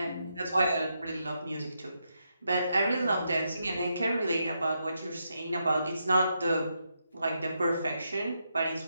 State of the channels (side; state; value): both; inverted; correlation -0.82